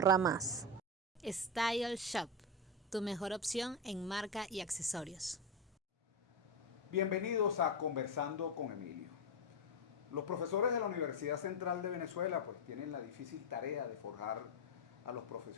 más. Style Shop, tu mejor opción en marca y accesorios. Bienvenidos a Conversando con Emilio. Los profesores de la Universidad Central de Venezuela pues tienen la difícil tarea de forjar a los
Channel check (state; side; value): normal; both; correlation 0.11